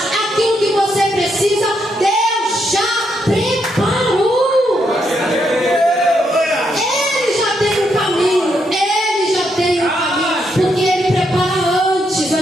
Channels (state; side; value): normal; both; correlation 0.78